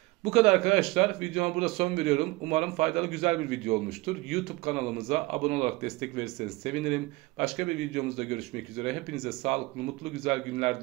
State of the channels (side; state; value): left; quieter; 22.3 dB